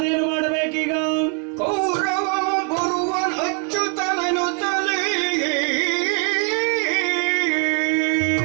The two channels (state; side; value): quieter; left; 35.9 dB